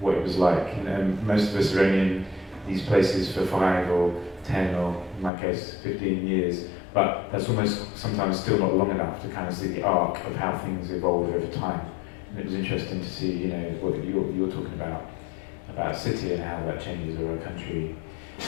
it was like. And most of us are only in these places for 5 or 10 or, in my case, 15 years, but that's almost sometimes still not long enough to kind of see the arc of how things evolve over time. And it was interesting to see, you know, what you're talking about a city and how that changes over a country.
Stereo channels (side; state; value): right; drops out; at 5.3 s